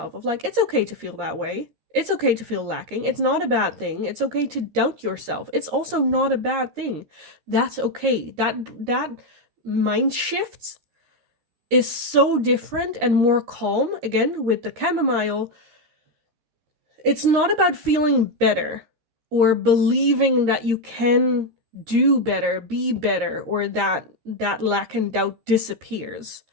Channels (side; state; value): left; late; 13 ms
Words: of like, it's okay to feel that way. It's okay to feel lacking. It's not a bad thing. It's okay to doubt yourself. It's also not a bad thing. That's okay. That mind shifts is so different and more calm. Again, with the chamomile, it's not about feeling better or believing that you can do better, be better, or that lack and doubt disappears.